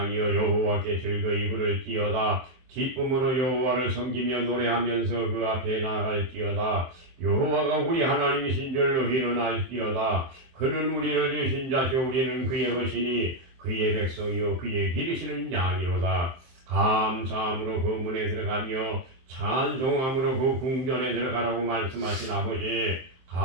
여호와께 즐거이 부를지어다. 기쁨으로 여호와를 섬기며 노래하면서 그 앞에 나아갈지어다. 여호와가 우리 하나님이신 줄로 희는할지어다. 그는 우리를 주신 자시오. 우리는 그의 것이니 그의 백성이요 그의 기르시는 양이로다. 감사함으로 그 문에 들어가며 찬송함으로 그 궁전에 들어가라고 말씀하신 아버지,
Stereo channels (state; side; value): late; left; 23 ms